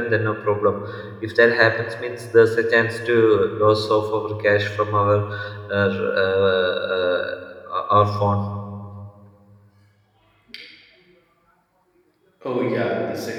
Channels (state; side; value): identical; both; correlation 1.00